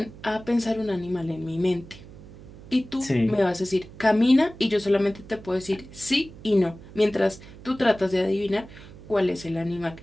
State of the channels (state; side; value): noise; right; hum, 18 dB below the sound